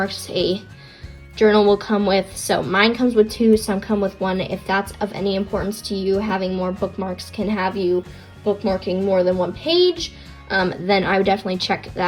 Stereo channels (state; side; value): identical; both; correlation 1.00